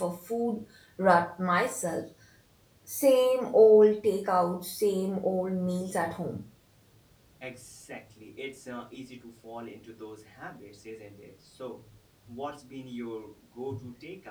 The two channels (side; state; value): both; identical; correlation 1.00